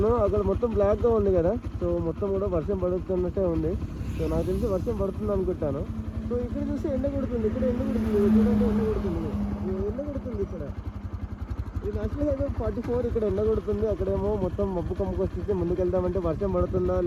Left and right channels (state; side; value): identical; both; correlation 1.00